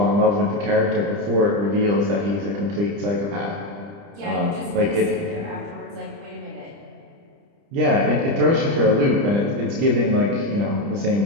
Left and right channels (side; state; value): left; late; 30 ms